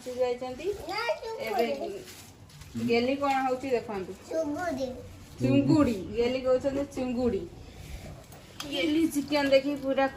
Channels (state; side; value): identical; both; correlation 1.00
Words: जाइछंती। एबे गेली कोन होउची देखंतु चुंगुडी चुंगुडी गेली कहछन चुंगुडी। गेली चिकन देखी पूरा